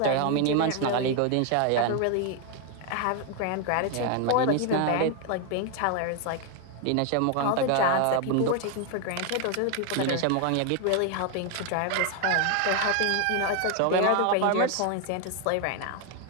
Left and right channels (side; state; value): both; different; correlation 0.01